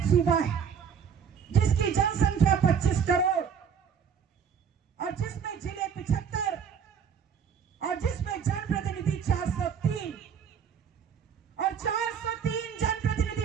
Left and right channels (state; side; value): quieter; left; 7.1 dB